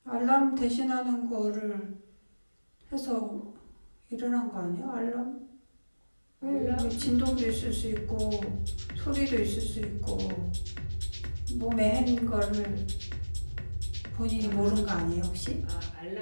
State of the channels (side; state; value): both; inverted; correlation -1.00